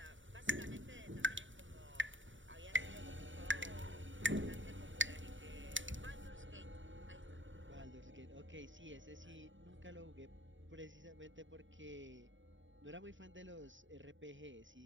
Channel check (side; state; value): left; late; 0.55 ms